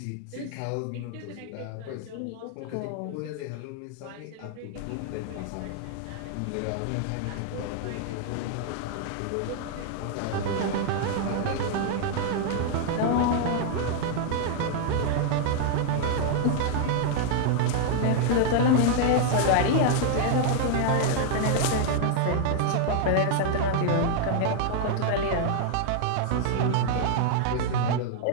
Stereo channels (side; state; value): both; different; correlation 0.00